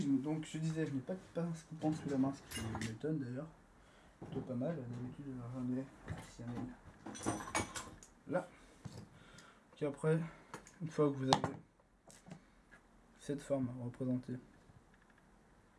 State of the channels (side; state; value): both; identical; correlation 1.00